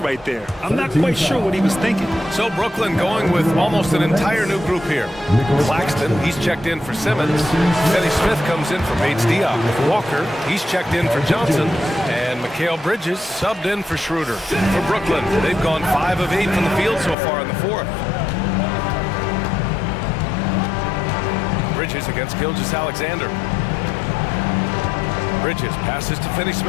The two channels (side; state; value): right; drops out; at 17.2 s